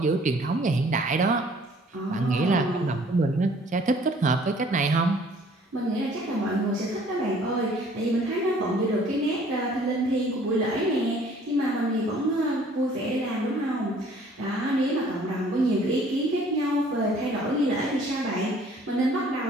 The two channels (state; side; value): normal; both; correlation 0.56